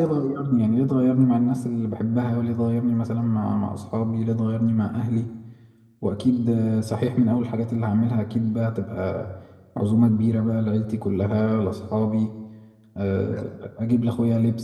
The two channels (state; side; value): identical; both; correlation 1.00